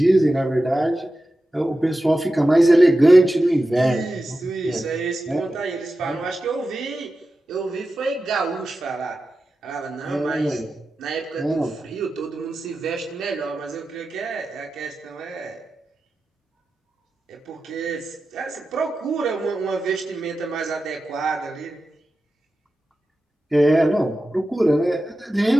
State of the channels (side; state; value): both; normal; correlation 0.93